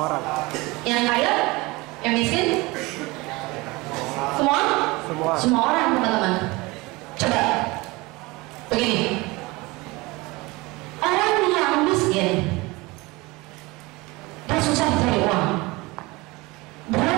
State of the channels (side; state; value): left; quieter; 23.0 dB